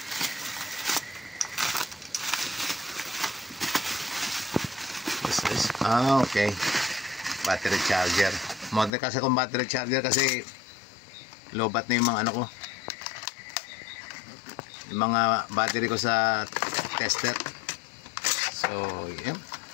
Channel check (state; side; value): drops out; right; at 8.9 s